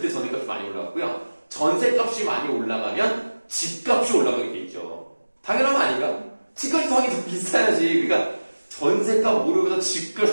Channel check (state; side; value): inverted; both; correlation -1.00